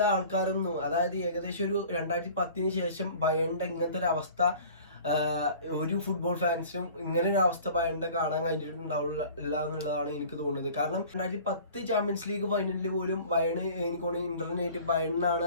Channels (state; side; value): inverted; both; correlation -0.46